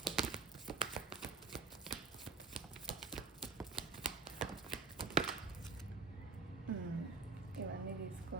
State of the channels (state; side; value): quieter; left; 4.6 dB